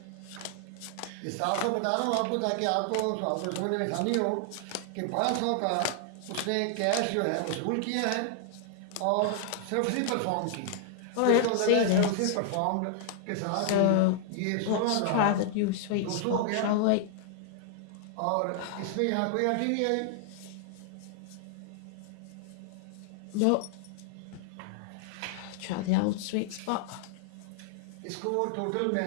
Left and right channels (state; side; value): different; both; correlation -0.01